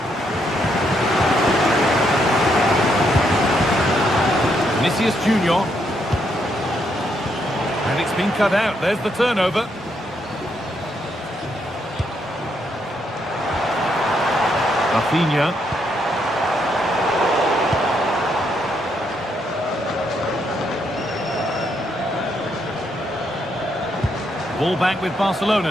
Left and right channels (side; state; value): both; normal; correlation 0.76